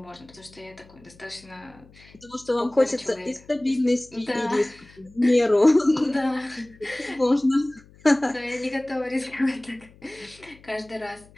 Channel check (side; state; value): left; noise; hum, 25 dB below the sound